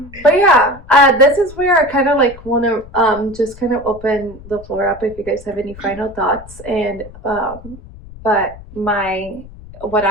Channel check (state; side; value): noise; left; rumble, 18 dB below the sound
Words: But yeah, this is where I kind of want to just kind of open the floor up if you guys have any final thoughts. And but what